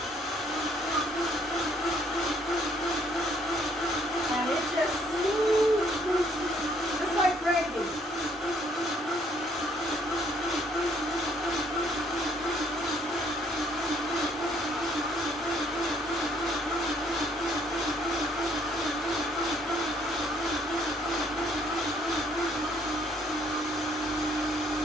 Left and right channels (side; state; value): both; normal; correlation 0.65